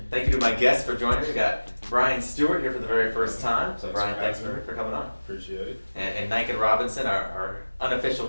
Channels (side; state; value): both; inverted; correlation -1.00